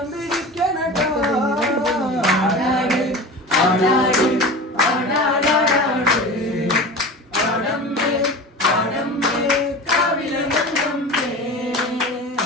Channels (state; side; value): normal; both; correlation 0.33